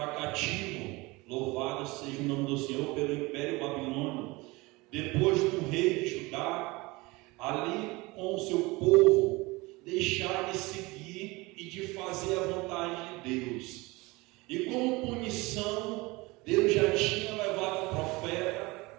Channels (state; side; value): quieter; left; 23.2 dB